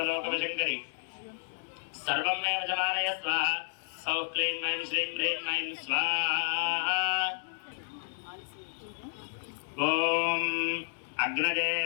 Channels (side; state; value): right; silent; digital silence